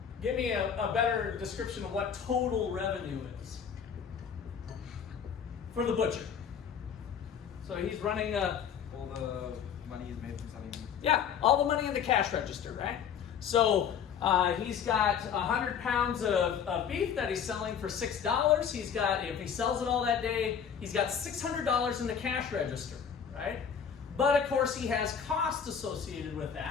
Give me a better description of what total revenue is for the butcher. So he's running all the money is made from selling meat. Yeah, all the money in the cash register, right? So he's got 100 pounds of beef that he's selling for $6. He's got, if he sells it all that day, he's got $600 in the cash register, right? But of course he has costs associated with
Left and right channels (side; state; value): right; quieter; 7.6 dB